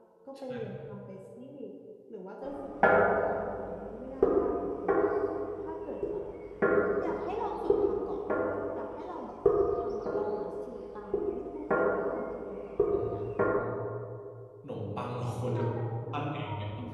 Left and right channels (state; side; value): identical; both; correlation 1.00